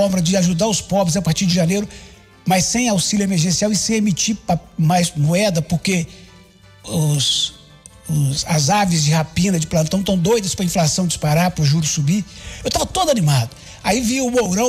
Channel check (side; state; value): both; identical; correlation 1.00